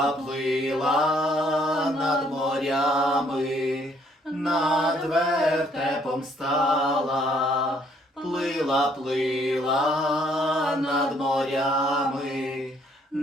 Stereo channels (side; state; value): both; normal; correlation 0.66